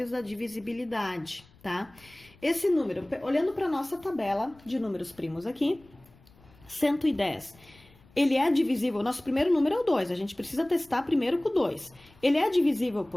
da divisibilidade, tá? Esse número, olhando para a nossa tabela de números primos aqui, 110. Ele é divisível, nosso primeiro número é o 2, a gente precisa testar primeiro com o 2. Ele é divisível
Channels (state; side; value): noise; left; rumble, 27 dB below the sound